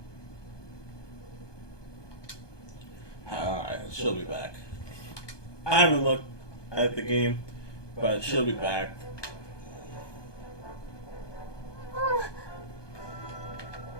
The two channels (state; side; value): late; right; 1.2 ms